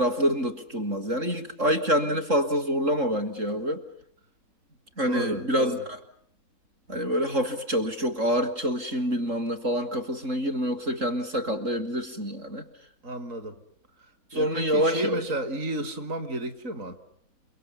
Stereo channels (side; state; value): left; late; 3.7 ms